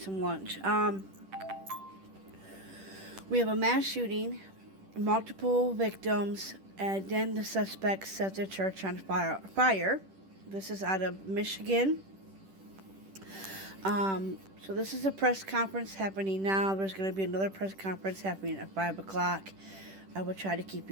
lunch. We have a mass shooting, multiple victims, and then the suspect set the church on fire. This is out of Michigan. So this is a press conference happening now. There's going to be another press conference happening at 5 o'clock. I will try to keep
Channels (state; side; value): late; left; 10 ms